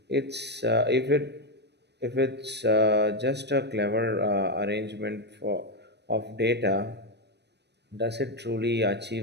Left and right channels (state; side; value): late; left; 0.50 ms